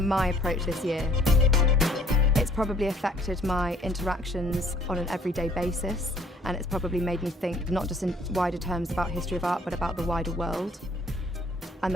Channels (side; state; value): both; normal; correlation 0.60